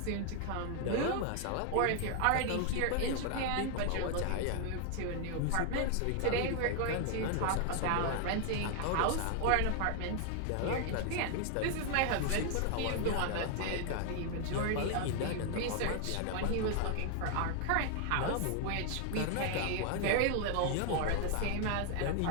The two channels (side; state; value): both; different; correlation 0.00